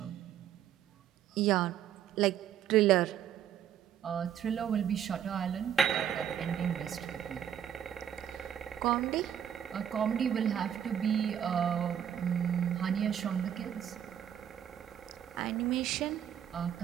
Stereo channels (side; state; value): left; quieter; 9.6 dB